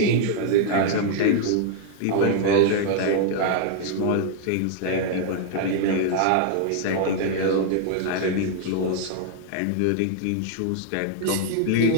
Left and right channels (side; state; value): both; different; correlation 0.00